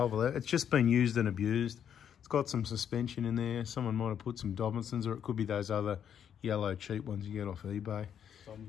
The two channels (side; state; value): right; quieter; 8.7 dB